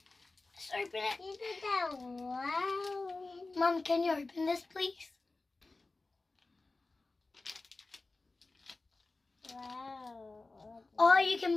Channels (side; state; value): right; quieter; 3.4 dB